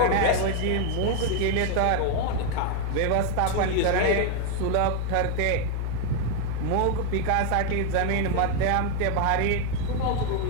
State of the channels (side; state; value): both; different; correlation 0.01